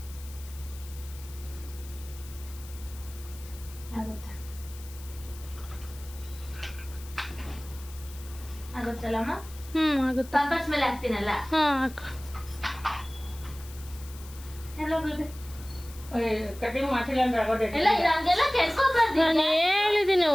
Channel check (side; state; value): left; noise; hiss, 18 dB below the sound